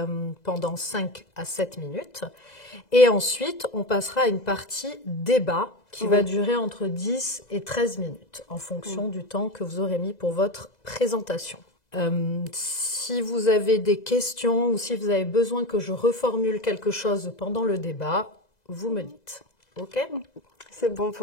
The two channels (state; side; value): late; right; 2.0 ms